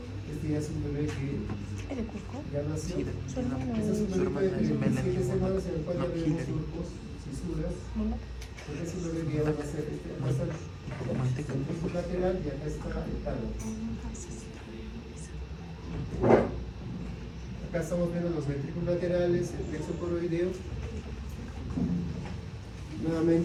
Este ya es un bebé que ya nació. Este es un bebé de 27 semanas en el cual ya vemos surcos, fisuras. Porque es un bebé que ya va a ser el plexo lateral y acá está el tálamo. Acá estamos viendo los ventrículos laterales, el plexo coroideo.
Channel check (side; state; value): both; identical; correlation 1.00